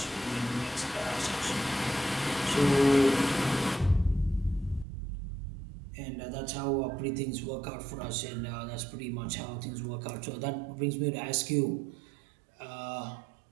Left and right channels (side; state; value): left; drops out; at 4.9 s